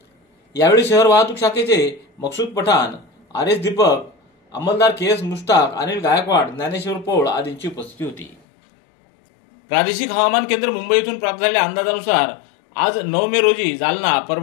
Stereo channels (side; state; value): right; drops out; at 8.4 s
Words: यावेळी शहर वाहतूक शाखेचे मकसूद पठाण, RS दीपक, अंमलदार KS मुश्ताक, अनिल गायकवाड, ज्ञानेश्वर पौळ आदींची उपस्थिती होती। प्रादेशिक हवामान केंद्र मुंबई येथून प्राप्त झालेल्या अंदाजानुसार आज 9 मे रोजी जालना,